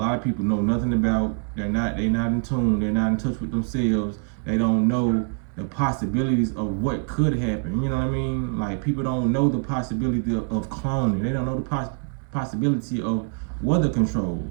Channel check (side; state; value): left; quieter; 39.6 dB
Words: of people know nothing about. They're not in tune. They're not in touch with themselves. They don't know the possibilities of what could happen. You know what I mean? Like, people don't know the possibility of cloning. They don't know the possibility of weather